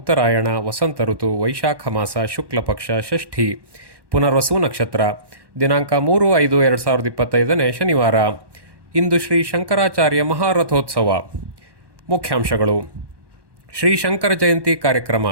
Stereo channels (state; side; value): late; left; 1.1 ms